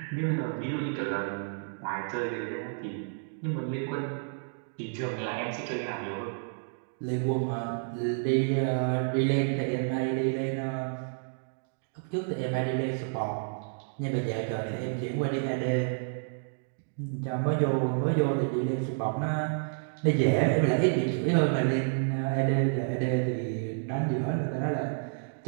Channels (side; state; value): left; silent; digital silence